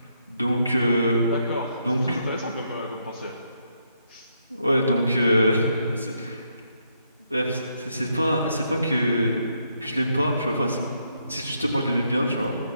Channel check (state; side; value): inverted; both; correlation -0.76